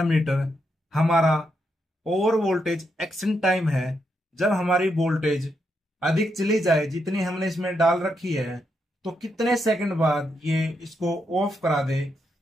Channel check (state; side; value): normal; both; correlation 0.81